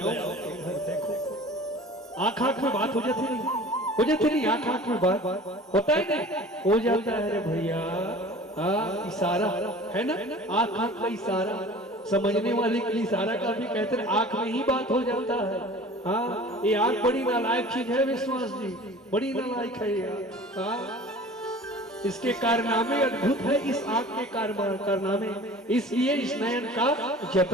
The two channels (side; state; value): both; normal; correlation 0.43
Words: देखो आंख आंख में बात हो जाती नहीं, हो जाती नहीं, आंख आंख में बात होता है नहीं, हो जाता है रे भैया। इशारा है ना, आंख आंख का इशारा, समझने वाले के लिए इशारा का भी कहते हैं, आंख में ही बात हो जाता है। हाँ, ये आंख बड़ी नालायक चीज है विश्वास जी, बड़ी नालायक है ये। इसके कारनामे अद्भुत है, इस आंख के कारनामे, इसलिए इस नयन का